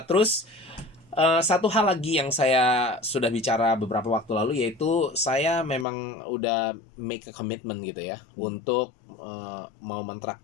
Terus satu hal lagi yang saya sudah bicara beberapa waktu lalu, yaitu saya memang udah make a commitment gitu ya, untuk mau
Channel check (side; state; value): right; drops out; at 5.9 s